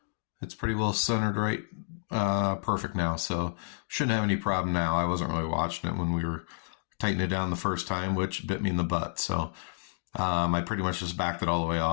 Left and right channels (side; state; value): right; silent; digital silence